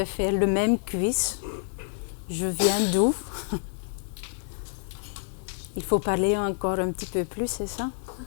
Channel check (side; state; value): right; silent; digital silence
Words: faire le même quiz. Je viens d'où? Il faut parler encore un petit peu plus, c'est ça?